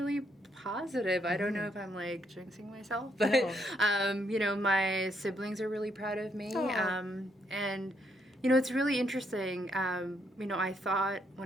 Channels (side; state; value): both; normal; correlation 0.74